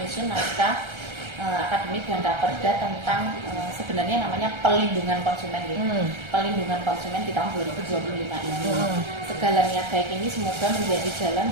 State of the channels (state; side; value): late; left; 1.3 ms